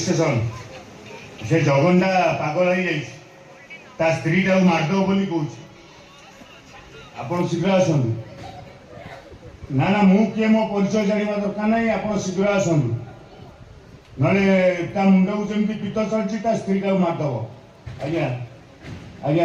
station से जगनटा पागल हो जाए स्त्री टाक मारदेव बोली कौच आप शीघ्र आसतु ना ना मु किए मो परिचय जाना दरकार ना आप शीघ्र आसतु ना मुंड को जमी पीत चलती स्त्री टाक मारदेव आज्ञा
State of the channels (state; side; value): identical; both; correlation 1.00